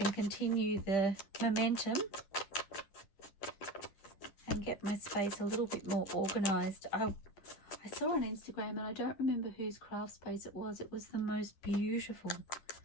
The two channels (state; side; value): late; right; 10 ms